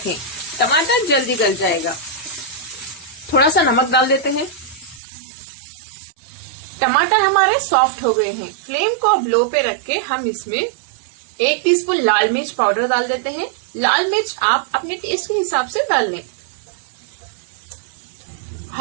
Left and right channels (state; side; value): drops out; left; at 5.0 s